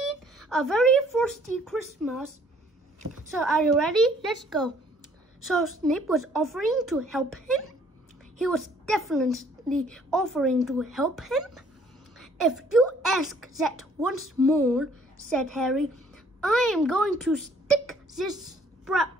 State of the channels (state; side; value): normal; both; correlation 0.61